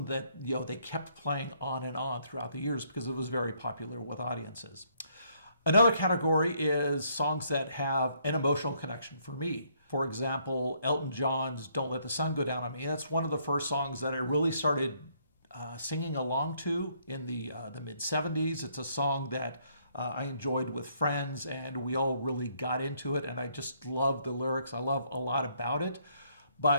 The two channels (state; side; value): inverted; both; correlation -0.69